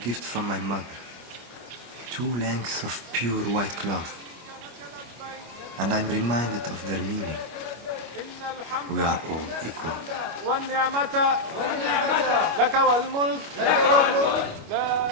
from my mother. 2 lengths of pure white cloth. And I'm reminded of their meaning. We are all equal. والنعمة لك والملك لا شريك لك.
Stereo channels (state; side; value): late; left; 25 ms